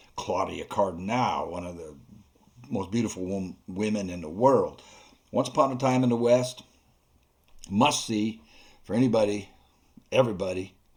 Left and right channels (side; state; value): both; identical; correlation 1.00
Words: Claudia Cardinal, one of the most beautiful women in the world. Once Upon a Time in the West, must see for anybody, everybody